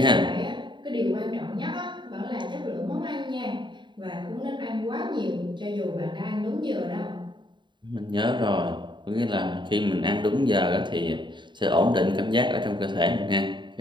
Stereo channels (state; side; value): late; left; 0.23 ms